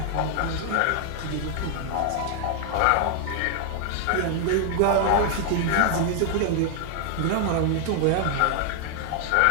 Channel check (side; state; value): both; different; correlation 0.00